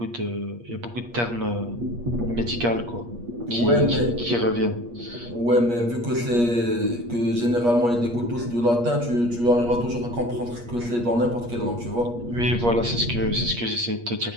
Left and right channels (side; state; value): left; late; 8.4 ms